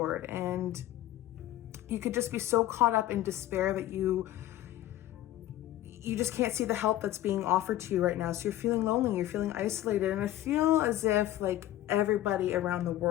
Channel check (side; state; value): right; quieter; 14.0 dB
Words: and you could just be so caught up in despair that you just can't see the help that's being offered to you right now. So you're feeling lonely, you're feeling isolated. And I feel as if like everybody around the